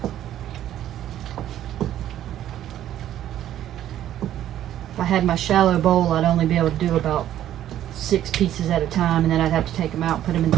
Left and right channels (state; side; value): quieter; left; 11.9 dB